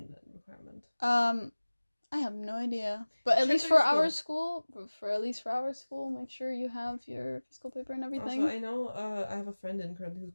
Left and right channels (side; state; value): both; inverted; correlation -1.00